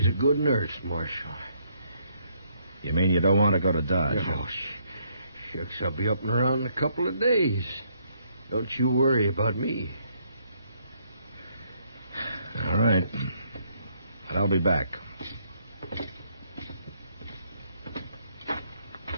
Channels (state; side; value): inverted; both; correlation -0.71